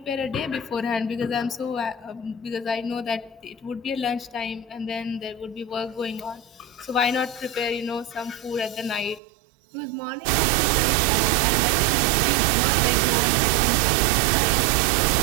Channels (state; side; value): drops out; left; at 9.2 s